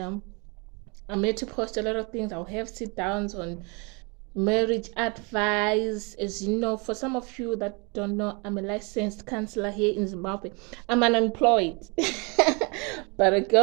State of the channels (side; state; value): left; quieter; 31.1 dB